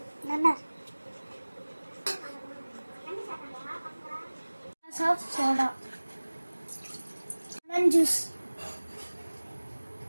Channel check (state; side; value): inverted; both; correlation -1.00